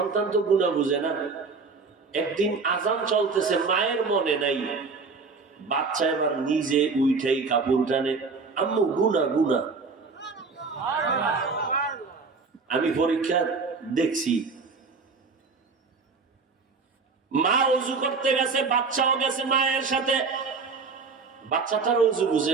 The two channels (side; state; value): left; quieter; 4.6 dB